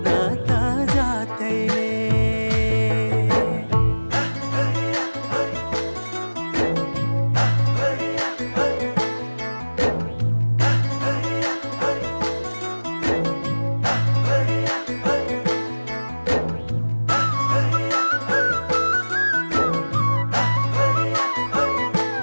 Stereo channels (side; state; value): both; inverted; correlation -1.00